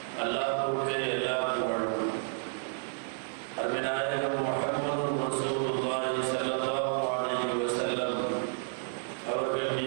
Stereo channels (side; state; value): left; silent; 57 dB below the other